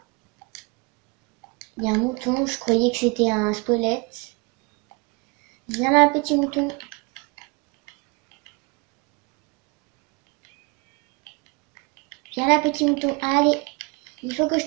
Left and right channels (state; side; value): quieter; left; 30.1 dB